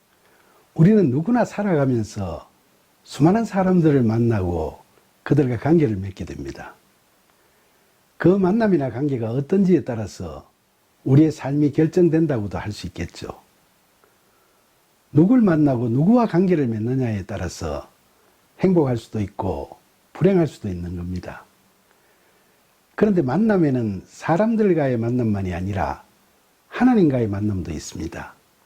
우리는 누구나 살아가면서 수많은 사람들을 만나고 그들과 관계를 맺게 됩니다. 그 만남이나 관계가 어떤지에 따라서 우리의 삶이 결정된다고도 할 수 있겠죠. 누굴 만나고 누구와 관계를 맺느냐에 따라서 행복할 수도 있고 불행할 수도 있는 겁니다. 그런데 만남에는 사람들과의 만남만이 아니라 하나님과의 만남도 있습니다.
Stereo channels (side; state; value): both; identical; correlation 1.00